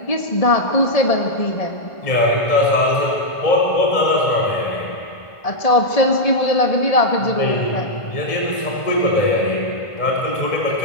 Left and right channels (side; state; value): right; late; 1.5 ms